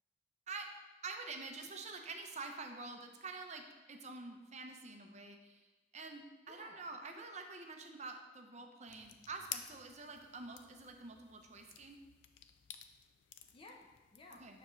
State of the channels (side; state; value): both; normal; correlation -0.07